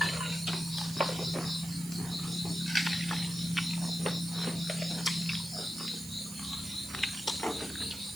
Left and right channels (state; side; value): noise; right; hiss, 12 dB below the sound